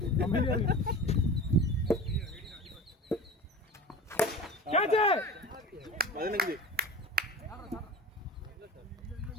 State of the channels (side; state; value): both; normal; correlation 0.34